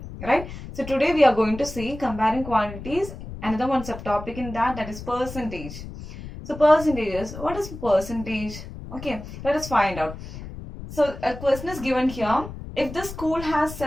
right? So today we are going to see comparing quantities, another one subtopic in that is percentage. So percentages, what is percentage? Okay, let us find out. So a question is given here. If the school has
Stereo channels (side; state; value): left; noise; rumble, 11 dB below the sound